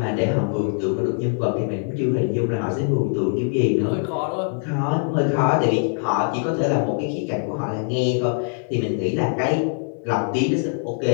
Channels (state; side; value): silent; right; 64 dB below the other